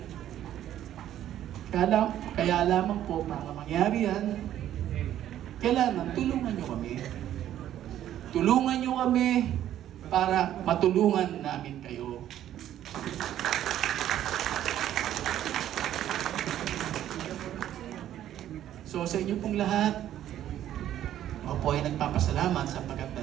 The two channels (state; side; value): quieter; left; 11.7 dB